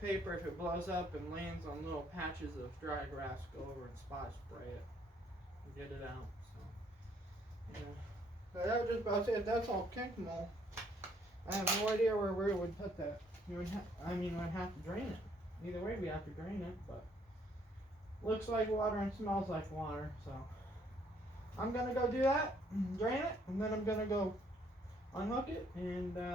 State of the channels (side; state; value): both; normal; correlation 0.66